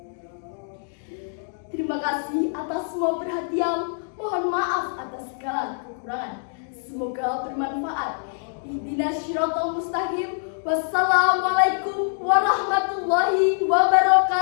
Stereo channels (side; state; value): right; silent; digital silence